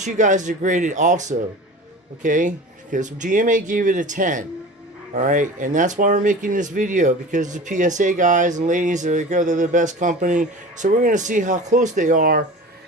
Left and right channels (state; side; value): normal; both; correlation 0.36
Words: you guys to grade it also, okay? Because GMA gave it a 10. All right, and that's why we're making this video, because the PSA guys and ladies they're the best company. So we're gonna see how close they are,